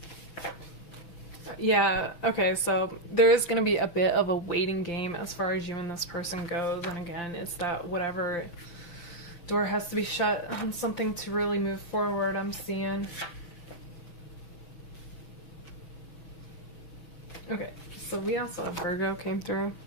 yeah, okay, so there is going to be a bit of a waiting game as far as you and this person goes, and again, it's that whatever door has to be shut on something to really move forward, I'm seeing. Okay, so we also have Virgo came through.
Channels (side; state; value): right; late; 6.3 ms